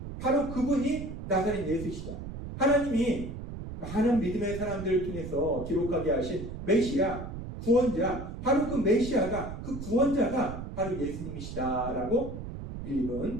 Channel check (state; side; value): noise; right; rumble, 8 dB below the sound